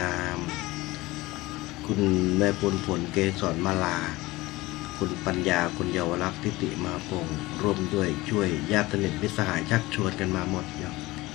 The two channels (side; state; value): right; quieter; 20.0 dB